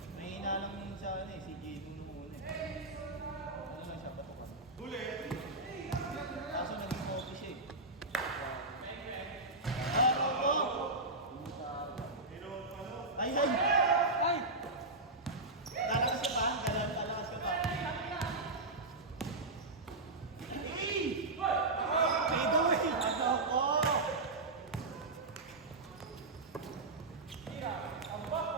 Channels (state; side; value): quieter; left; 3.0 dB